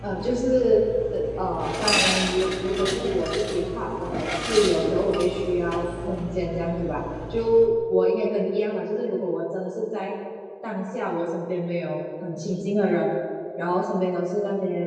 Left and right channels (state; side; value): identical; both; correlation 1.00